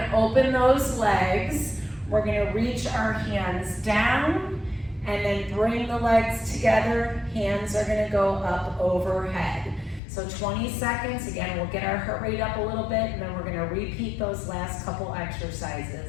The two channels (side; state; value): right; drops out; at 10.0 s